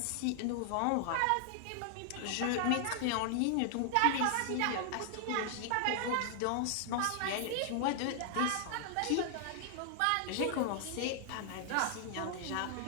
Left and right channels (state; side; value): different; both; correlation 0.00